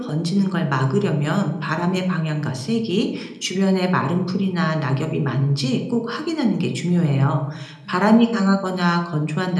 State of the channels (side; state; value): both; identical; correlation 1.00